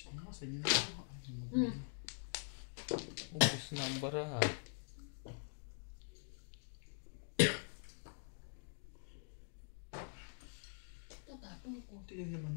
sa inyo? Ubus na ang baraha. Tatapon ko. Kunti lang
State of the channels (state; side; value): silent; right; digital silence